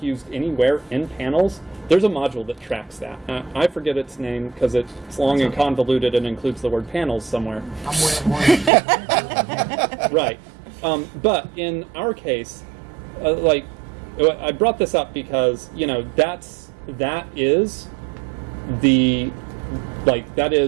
used anywhere in panels, there's a module that tracks that. I forget its name because it's long and convoluted and includes the word panels somewhere. Right. But in our case, like, I brought this up because, you know, that is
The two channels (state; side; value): drops out; left; at 8.7 s